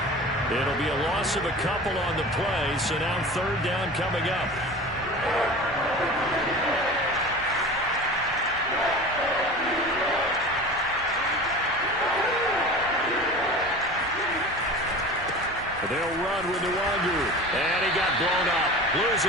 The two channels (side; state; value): both; normal; correlation 0.35